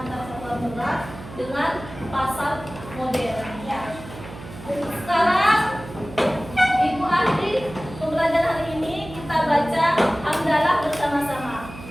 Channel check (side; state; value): right; noise; hum, 14 dB below the sound